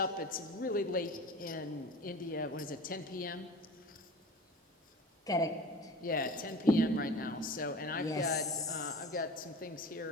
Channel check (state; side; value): normal; both; correlation 0.36